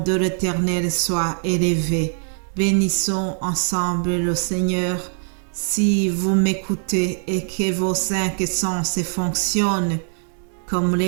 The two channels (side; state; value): left; silent; 64 dB below the other